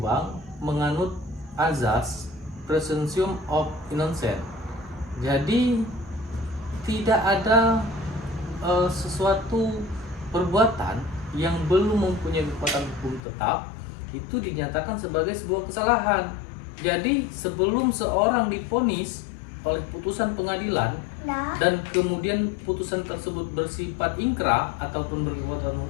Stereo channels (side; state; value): right; drops out; at 13.2 s